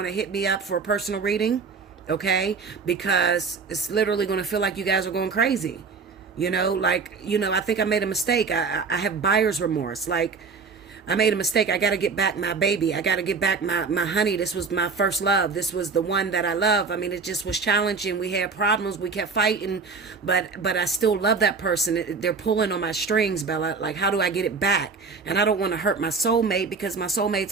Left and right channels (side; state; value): left; quieter; 5.0 dB